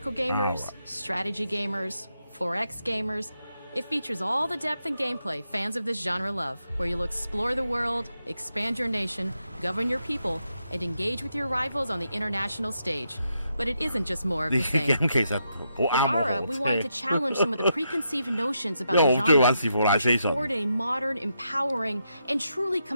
gamers, strategy gamers, 4X gamers. It features all the depth and gameplay fans of this genre love, where you'll explore the world, expand your nation, govern your people, and engage with your rivals on the international stage. But it isn't just more of the same. With Ara, we wanted to challenge some of the preconceived notions about the genre, push forward in a modern, empowering, and truly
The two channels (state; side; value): inverted; both; correlation -0.82